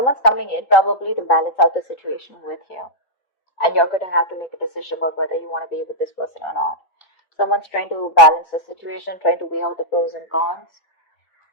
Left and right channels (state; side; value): late; right; 3.5 ms